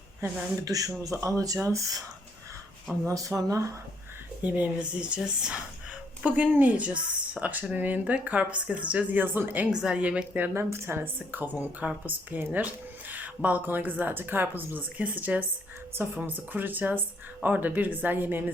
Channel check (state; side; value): normal; both; correlation 0.70